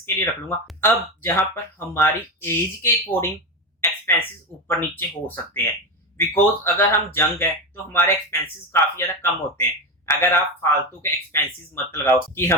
के लिए रख लूंगा। अब जहां पर हमारी एज के अकॉर्डिंग एक्सपेंसेस ऊपर नीचे हो सकते हैं, बिकॉज अगर हम जंग है तो हमारे एक्सपेंसेस काफी ज्यादा कम होते हैं। अगर आप फालतू के एक्सपेंसेस मत लगाओ कि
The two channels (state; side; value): normal; both; correlation 0.17